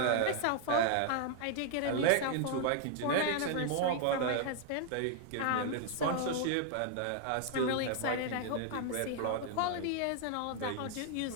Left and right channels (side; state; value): both; different; correlation 0.00